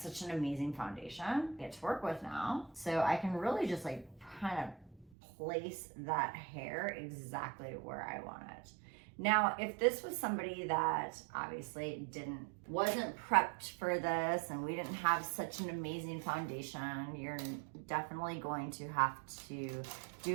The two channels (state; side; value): drops out; left; at 5.1 s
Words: an amazing foundation I get to work with now. So I can really just like kind of place that hair exactly where I want it. Now, if this was somebody that obviously wasn't prepped for this and we didn't have such an amazing foundation, you're definitely going to have to